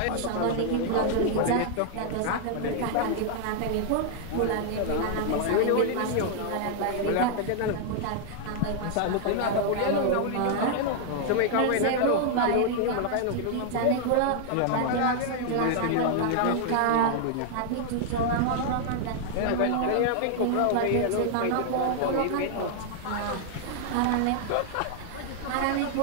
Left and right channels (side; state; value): both; different; correlation -0.01